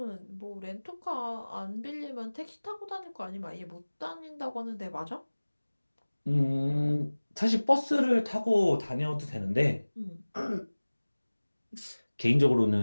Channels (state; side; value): inverted; both; correlation -1.00